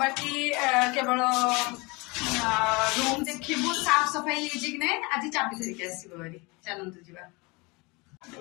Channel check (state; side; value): quieter; right; 26.5 dB